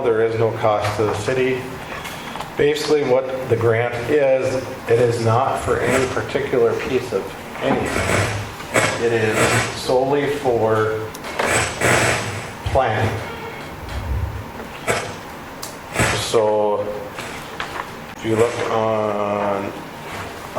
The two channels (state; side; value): identical; both; correlation 1.00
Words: there is no cost to the city. Basically, what the grant is, it is not for any particular piece of anything. It is solely for planning. So, if you look on